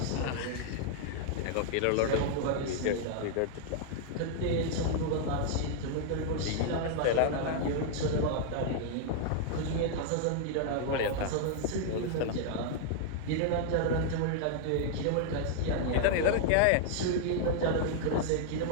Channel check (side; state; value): both; different; correlation 0.00